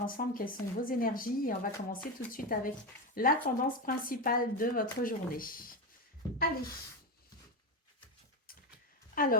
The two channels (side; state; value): both; normal; correlation 0.14